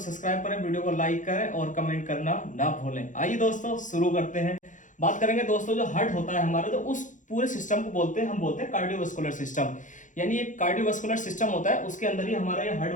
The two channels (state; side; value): late; right; 0.37 ms